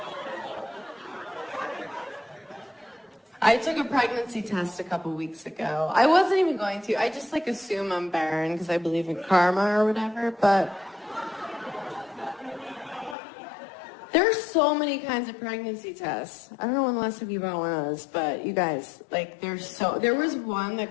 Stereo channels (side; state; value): right; drops out; at 13.2 s